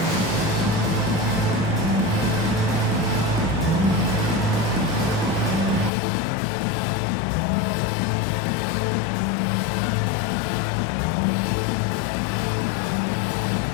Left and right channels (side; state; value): right; drops out; at 5.9 s